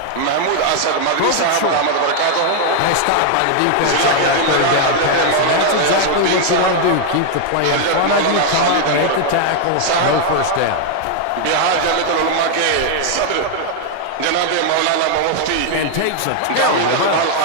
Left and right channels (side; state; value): both; different; correlation 0.00